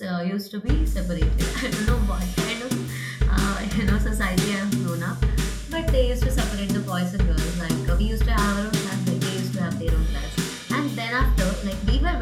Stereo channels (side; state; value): both; identical; correlation 1.00